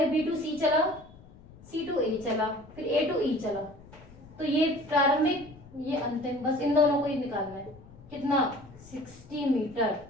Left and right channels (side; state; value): left; noise; rumble, 22 dB below the sound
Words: B to C चला, C to A चला, फिर A to E चला, तो ये प्रारंभिक, ये अंतिम, बस इन दोनों को ही निकालना है। कितना? 60 मीटर।